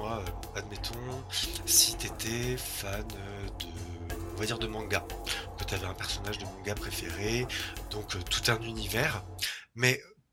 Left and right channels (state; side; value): identical; both; correlation 1.00